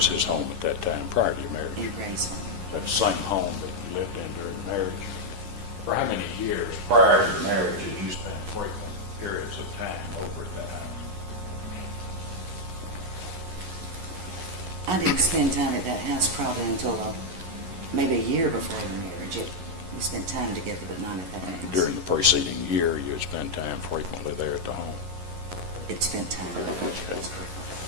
his home at that time prior to your marriage? in Graceland. That same home that you lived in during marriage? For how many years prior to your marriage did you spend frequent periods of time over there? I didn't spend time at that house probably until maybe a year before the marriage. We spent time together, but not at that house. During the preceding year, you had spent time frequently there at the home. It spent time.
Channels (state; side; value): late; left; 11 ms